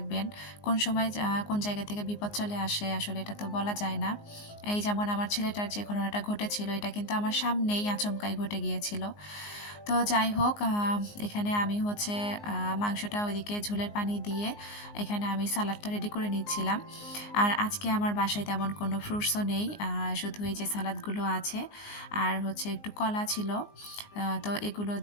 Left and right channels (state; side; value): late; right; 19 ms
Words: কোন সময় কোন জায়গা থেকে বিপদ চলে আসে আসলে এটা তো বলা যায় না। এই যেমন আমার ছেলেটার যে ঘটনাটা ঘটেছিল, এটা কিন্তু আমার সামনেই আচমকাই ঘটে গিয়েছিল। তো যাই হোক, এখানে আমি হচ্ছে মাংসটা ওইদিকে ঝোলের পানি দিয়ে এখানে আমি সালাডটা রেডি করে নিচ্ছিলাম। আর আজকে আমার বাসায় তেমন কোনো ফ্রুটসও নেই, শুধু এই যে সালাদগুলো আছে আর হচ্ছে একটু কলা ছিল। তো এগুলো